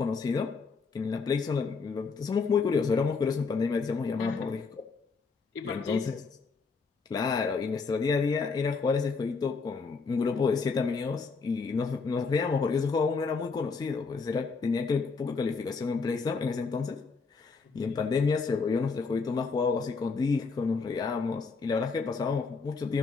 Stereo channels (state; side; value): quieter; right; 4.7 dB